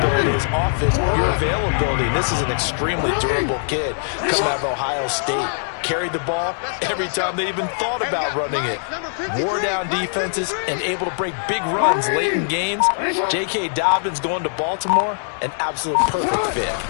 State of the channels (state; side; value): silent; right; digital silence